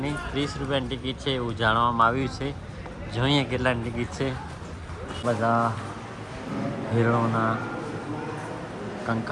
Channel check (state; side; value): identical; both; correlation 1.00